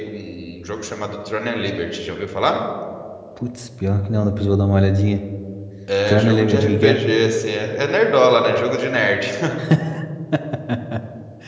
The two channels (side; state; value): both; identical; correlation 1.00